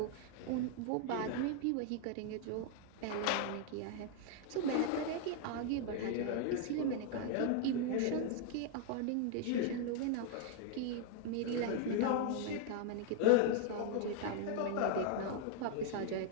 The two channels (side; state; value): both; different; correlation 0.00